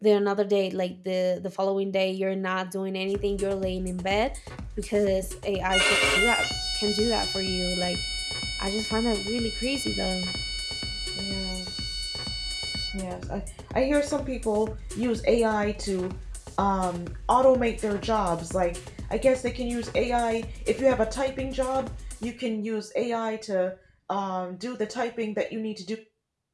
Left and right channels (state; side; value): identical; both; correlation 1.00